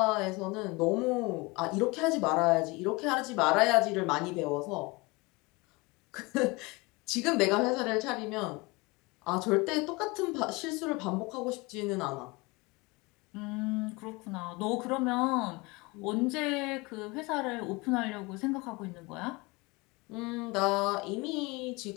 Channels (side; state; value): right; quieter; 24.9 dB